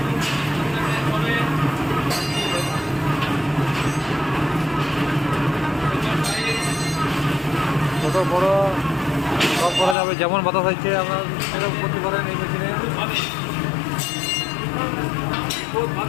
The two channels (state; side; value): drops out; right; at 10.0 s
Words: কত বড় সব করা যাবে, যেমন বাতাস হচ্ছে আপনার সেরকম করতে পারেন এই মেশিনে।